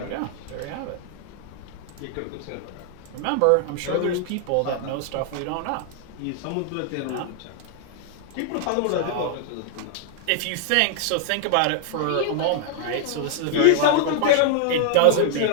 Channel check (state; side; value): different; both; correlation 0.00